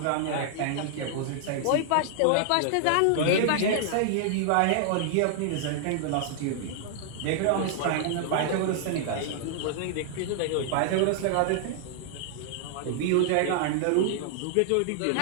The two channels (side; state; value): both; different; correlation 0.00